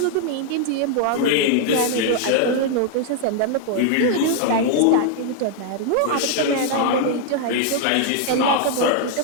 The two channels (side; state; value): both; different; correlation 0.00